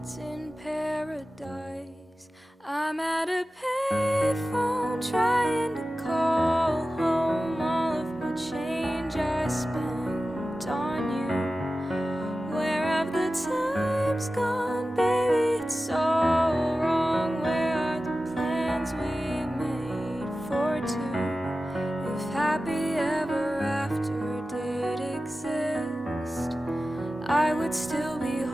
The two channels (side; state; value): both; normal; correlation 0.95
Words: in paradise. I'm at a payphone trying to call home all of my change I spent on you. Where have the times gone, baby? It's so wrong. Where are the plans we made for two? If happy ever after did exist, I would still be